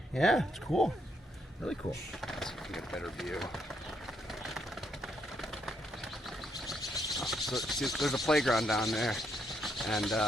Yeah, it's cool. Really cool. Let's see if we can get a better view. So, see, there's a playground down there, and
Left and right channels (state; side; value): normal; both; correlation 0.76